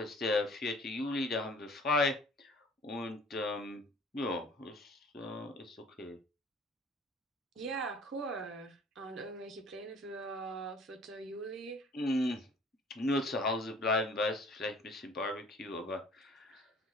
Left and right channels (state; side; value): normal; both; correlation 0.51